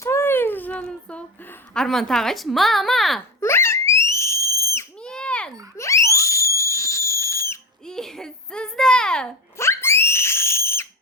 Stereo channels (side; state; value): both; normal; correlation 0.23